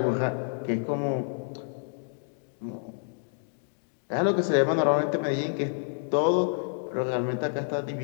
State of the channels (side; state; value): right; silent; digital silence